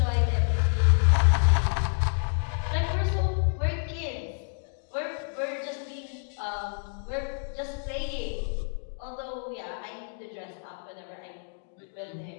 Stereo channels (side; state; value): right; silent; digital silence